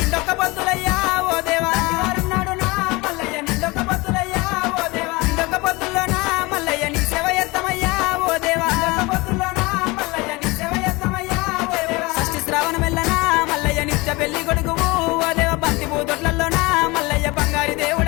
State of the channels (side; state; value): right; quieter; 23.7 dB